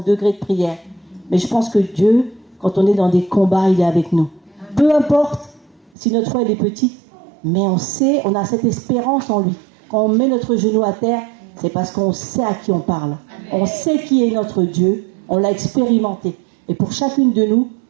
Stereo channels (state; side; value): drops out; left; at 5.9 s